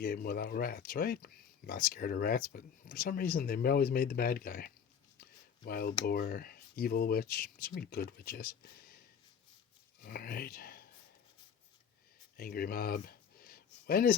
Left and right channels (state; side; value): quieter; right; 7.4 dB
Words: without rats, right? I'm not scared of rats, but for some reason they always made the bad guy. Wild boar, evil witch, so many good witches. Alright. Angry mob. When is